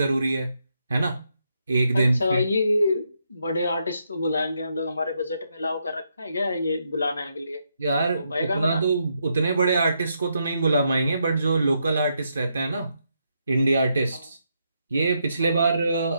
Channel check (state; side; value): inverted; both; correlation -0.79